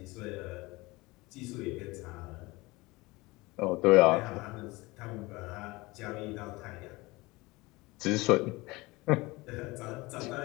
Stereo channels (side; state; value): right; quieter; 22.4 dB